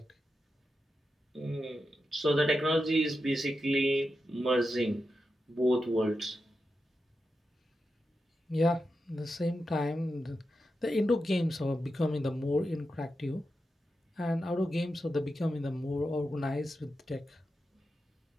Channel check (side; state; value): both; normal; correlation 0.89